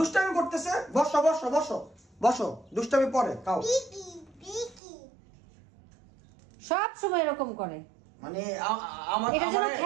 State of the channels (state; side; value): drops out; left; at 4.8 s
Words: করতেছে বসো বসো বসো বসো দুষ্টামি পরে খাও সব সময় এরকম করে মানে আমার এটা যেন